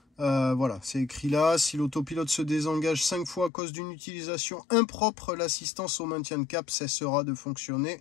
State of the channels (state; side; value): drops out; right; at 3.5 s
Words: voilà, c'est écrit là. Si l'autopilote se désengage 5 fois à cause d'une utilisation impropre, l'assistance au maintien de cap cessera de fonctionner.